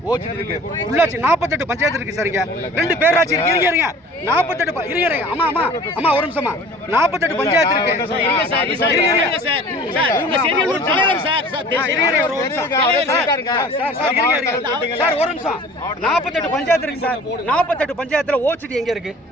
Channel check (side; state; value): both; normal; correlation 0.46